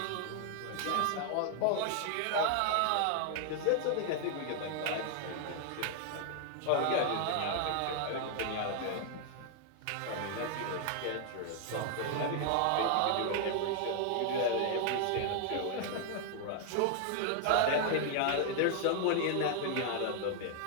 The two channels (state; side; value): different; both; correlation 0.00